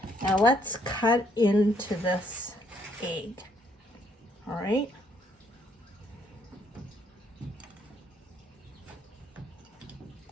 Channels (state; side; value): normal; both; correlation 0.69